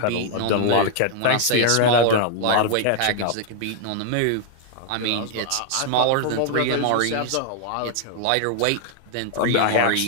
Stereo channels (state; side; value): different; both; correlation 0.00